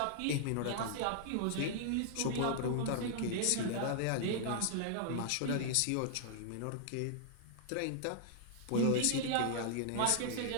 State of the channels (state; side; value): different; both; correlation -0.01